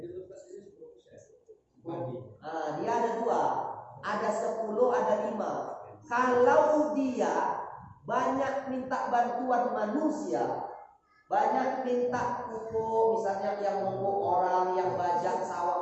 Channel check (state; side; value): identical; both; correlation 1.00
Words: Dia ada 2, ada 10, ada 5. Kalau dia banyak minta bantuan manusia, banyak minta pupuk, misalnya yang pupuk orang, yang bajak sawah